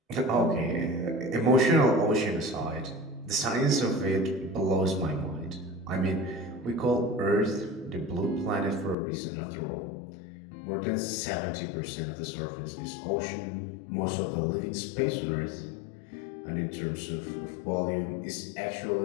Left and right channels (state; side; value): drops out; right; at 9.0 s